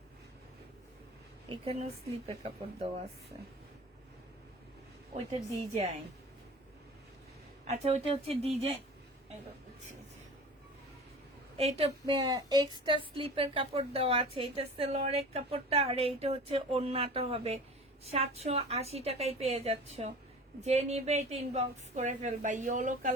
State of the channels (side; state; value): both; normal; correlation 0.39